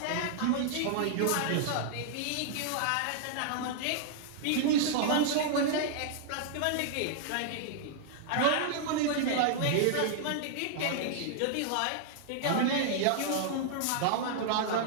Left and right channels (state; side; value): different; both; correlation -0.01